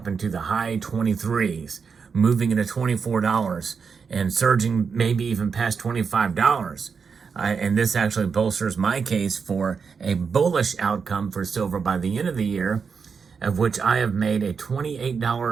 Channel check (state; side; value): quieter; left; 5.8 dB